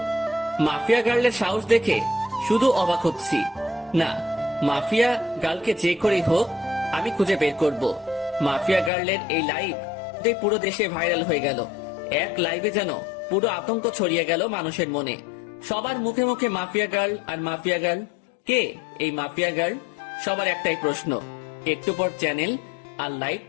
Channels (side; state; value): right; drops out; at 8.9 s